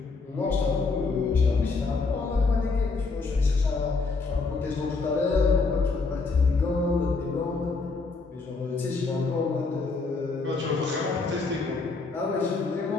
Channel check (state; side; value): quieter; right; 4.1 dB